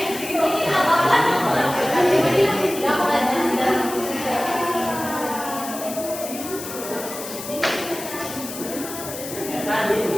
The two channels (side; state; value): left; noise; hiss, 10 dB below the sound